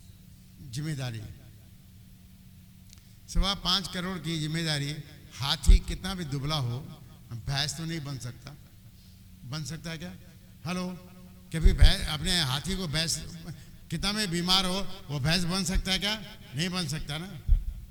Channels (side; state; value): both; identical; correlation 1.00